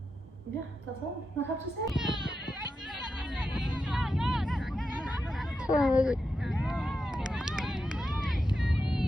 yeah, that's all I have to say. Yes.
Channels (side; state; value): both; normal; correlation 0.88